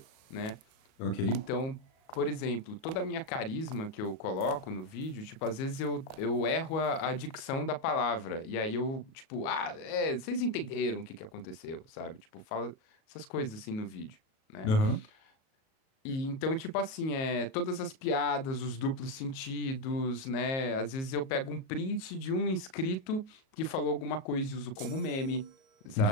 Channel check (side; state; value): right; late; 37 ms